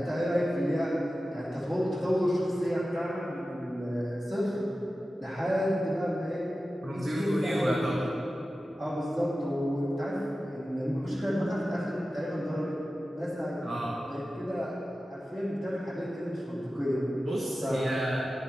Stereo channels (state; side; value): normal; both; correlation 0.94